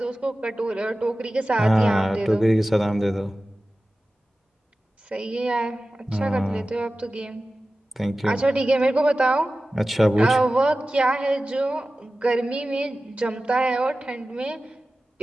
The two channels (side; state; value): both; normal; correlation 0.95